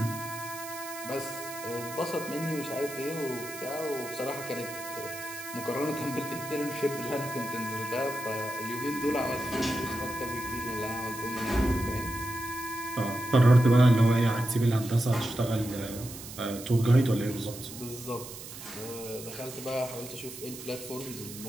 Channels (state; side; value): noise; right; hiss, 12 dB below the sound